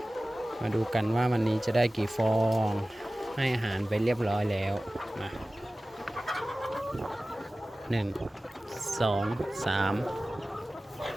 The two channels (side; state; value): both; normal; correlation 0.97